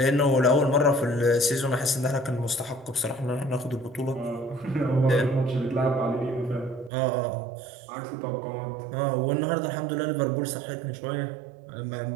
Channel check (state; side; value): drops out; left; at 6.9 s